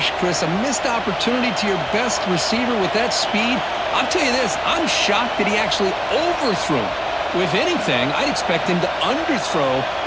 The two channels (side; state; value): both; identical; correlation 1.00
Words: Chris, a missed opportunity to your best receiver with that speed. I'll tell you this, I'm shocked that he actually overthrew. If anything, I'd expect him to underthrow